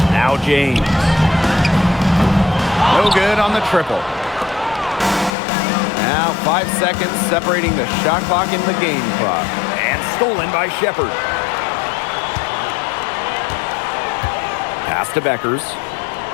Now James. No good on the triple. Now 5 seconds separating the shot clock and the game clock. And stolen by Shepard. Pass to Beckers.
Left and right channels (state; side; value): drops out; right; at 5.3 s